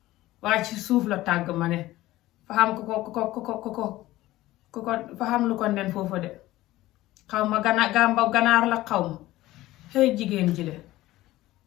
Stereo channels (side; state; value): right; quieter; 16.7 dB